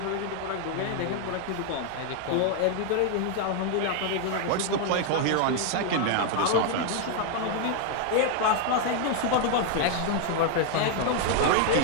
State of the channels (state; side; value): different; both; correlation 0.00